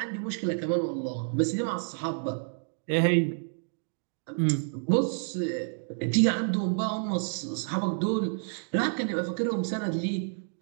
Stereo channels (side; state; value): left; silent; digital silence